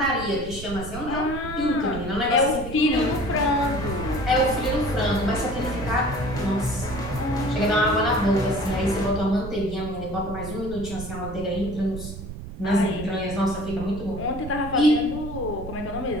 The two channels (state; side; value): noise; right; rumble, 10 dB below the sound